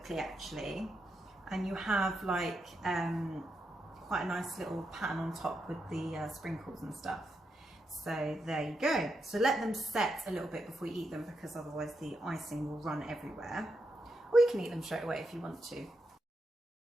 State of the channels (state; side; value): normal; both; correlation 0.84